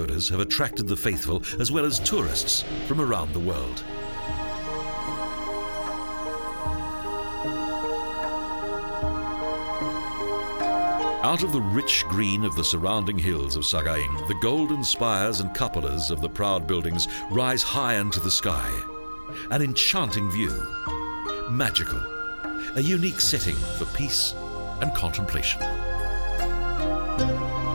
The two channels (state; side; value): inverted; both; correlation -1.00